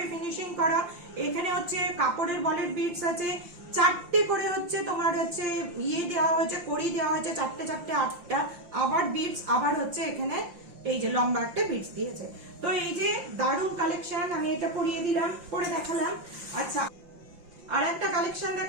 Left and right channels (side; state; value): left; late; 5.8 ms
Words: ফিনিশিং করা। এখানে হচ্ছে কাপড়ের বলের বিটস আছে, চারটে করে হচ্ছে তোমার হচ্ছে ইয়ে দেওয়া হয়েছে, কড়ি দেওয়া হয়েছে, চারটে চারটে 8টা। আবার বিটস, আবার হচ্ছে এখানে এই যে লম্বা একটা বিটস দিয়েছে। তো এই যে দারুণ কালেকশন, আমি এটা পরিয়ে দিলাম, পরে দেখালাম। আচ্ছা, আর একটা কালেকশন